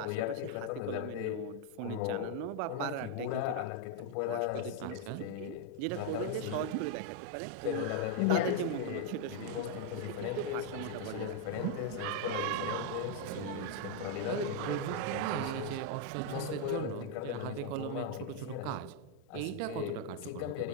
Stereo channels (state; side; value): different; both; correlation 0.00